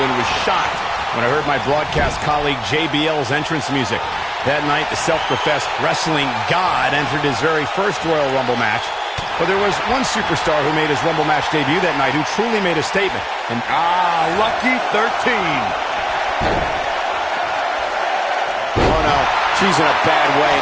and was shocked when I heard my broadcast colleague JBL's entrance music. That night, the self-professed wrestling god entered his very first Royal Rumble match. But there was one superstar who made his Rumble match debut that night who truly made a statement. And lucky 13. oh no, she's in a bad way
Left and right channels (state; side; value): identical; both; correlation 1.00